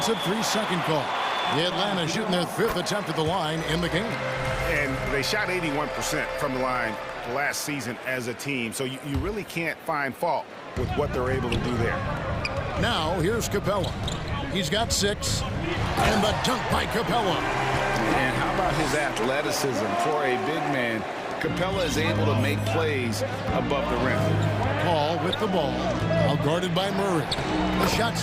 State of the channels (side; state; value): both; identical; correlation 1.00